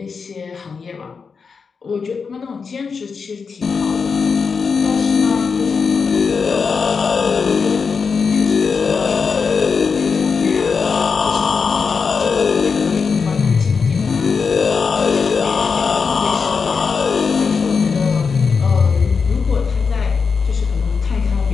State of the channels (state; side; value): quieter; right; 5.3 dB